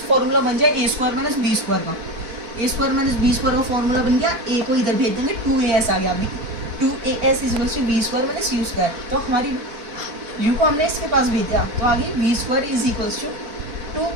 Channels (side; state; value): left; late; 4.5 ms